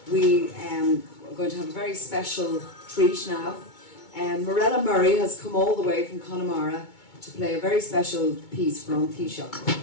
we are going to have a very special treat now. Mirella Murray has come all the way from Connemara to play a very special piece from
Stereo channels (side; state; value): right; late; 2.2 ms